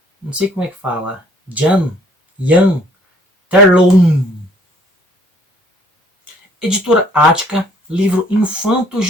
não sei como é que fala, Jan Terlouw. Editora Ática, livro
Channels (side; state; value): both; normal; correlation 0.59